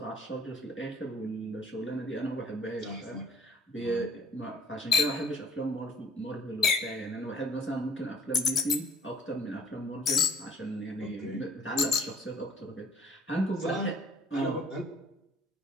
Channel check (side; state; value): both; normal; correlation 0.55